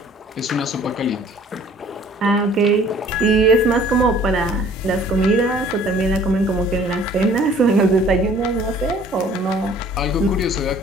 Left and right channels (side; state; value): both; normal; correlation 0.54